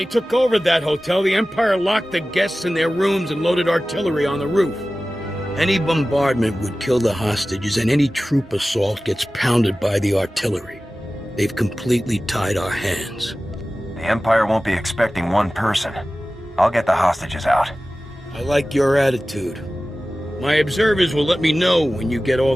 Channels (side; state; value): both; normal; correlation 0.96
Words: took over that hotel, the Empire locked the guests in their rooms and loaded artillery on the roof. Any bombardment would kill the hostages, and any troop assault gets pounded by the artillery. They've completely tied our hands. The Empire won't be expecting one person. I'll get the hostages out. I like your attitude. My observers will let me know when you get all